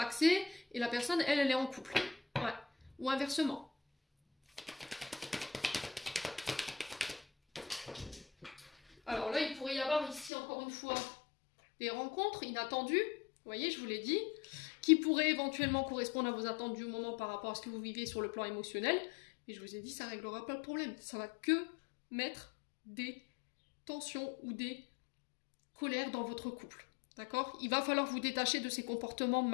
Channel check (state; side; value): drops out; right; at 10.3 s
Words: et la personne, elle est en couple. Ouais. Ou inversement. Alors là, il pourrait y avoir ici, encore une fois, des rencontres inattendues. Vous voyez, je vous l'ai dit. Qui pourrait éventuellement correspondre à vos attentes du moment par rapport à ce que vous vivez sur le plan émotionnel. Mais je vous ai dit, ça ne réglera pas le problème. Ça va que mettre des tensions ou des colères dans votre couple. D'accord? Il va falloir vous détacher de ces comportements